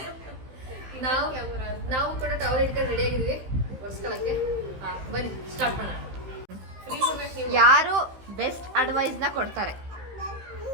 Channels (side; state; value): left; late; 15 ms